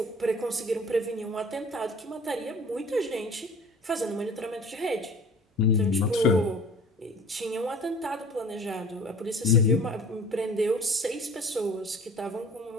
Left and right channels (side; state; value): both; normal; correlation 0.46